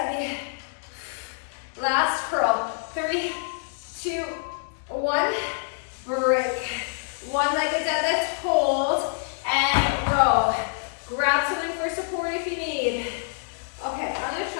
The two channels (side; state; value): right; silent; 61 dB below the other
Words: Last curl. 3, 2, 1. Break. One-legged deadlift. Hold and row. Grab something for support if you need. Okay, I'm gonna